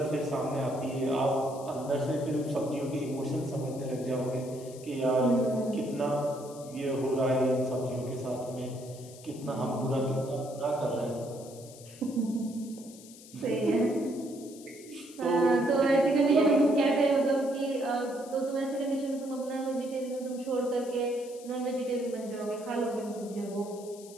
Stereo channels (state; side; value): noise; left; hiss, 19 dB below the sound